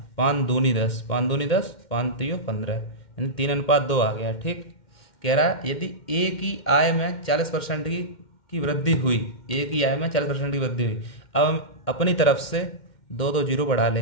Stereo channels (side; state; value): right; late; 2.1 ms